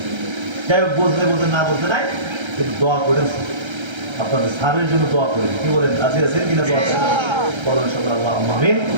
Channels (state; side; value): late; left; 1.3 ms